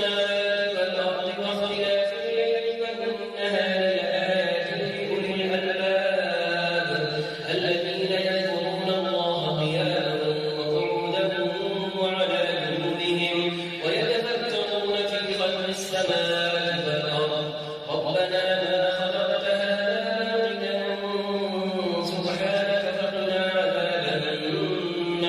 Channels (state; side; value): identical; both; correlation 1.00